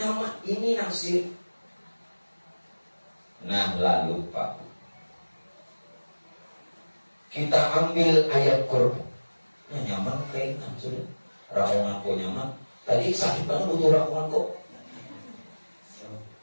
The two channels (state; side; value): inverted; both; correlation -1.00